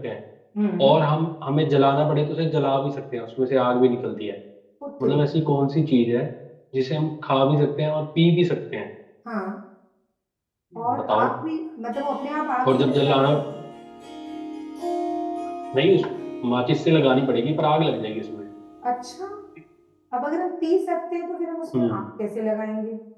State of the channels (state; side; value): identical; both; correlation 1.00